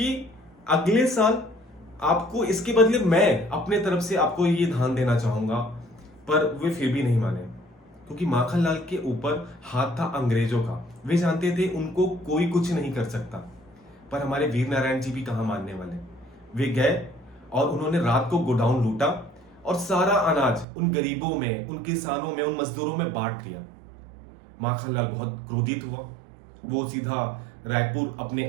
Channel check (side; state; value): left; drops out; at 20.7 s